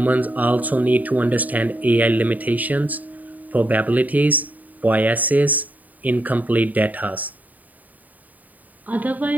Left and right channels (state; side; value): late; left; 0.077 ms